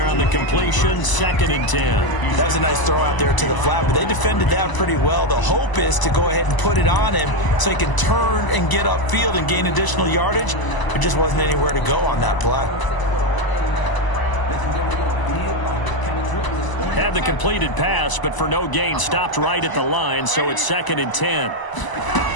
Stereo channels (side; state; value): right; late; 1.0 ms